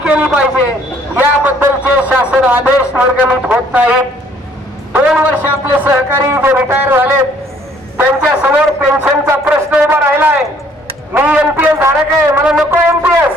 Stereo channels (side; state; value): both; normal; correlation 0.61